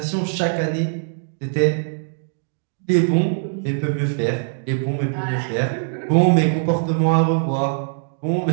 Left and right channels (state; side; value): silent; left; 65 dB below the other